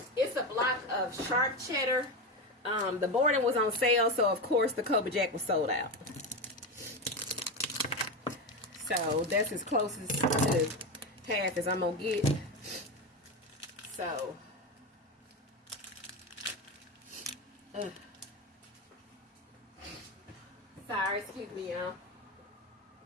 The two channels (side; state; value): both; normal; correlation 0.17